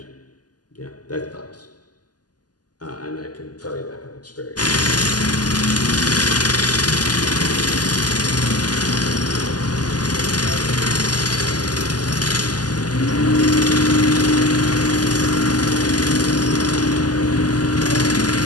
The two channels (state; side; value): late; right; 0.69 ms